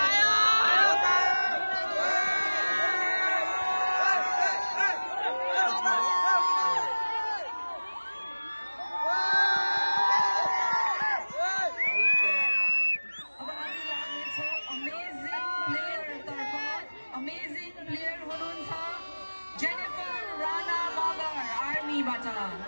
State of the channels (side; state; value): both; inverted; correlation -1.00